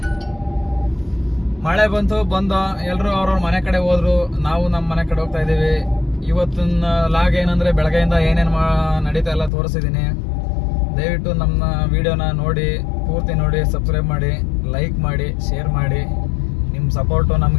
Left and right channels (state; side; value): drops out; right; at 9.5 s